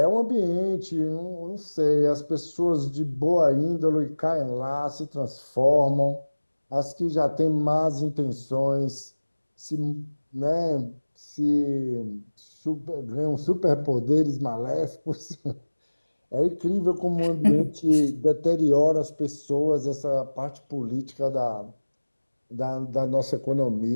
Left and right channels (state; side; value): inverted; both; correlation -1.00